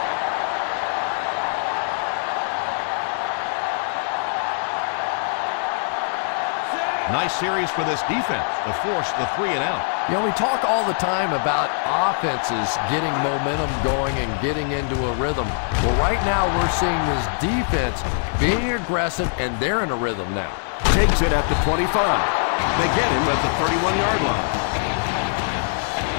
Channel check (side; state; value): right; silent; digital silence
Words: Nice series for this defense to force the 3 and out. You know, we talk all the time about offenses getting momentum going and getting into a rhythm. Well, right now we're seeing this defense being aggressive, and they're in a rhythm now. Takes it at the 25. They get him at the 31-yard line.